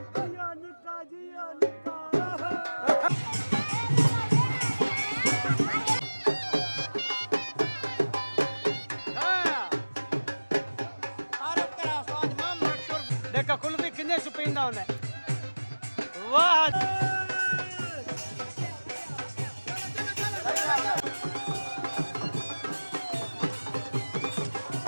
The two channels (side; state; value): both; inverted; correlation -1.00